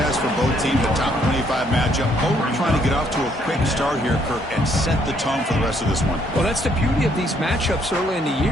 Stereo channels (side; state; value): both; normal; correlation 0.69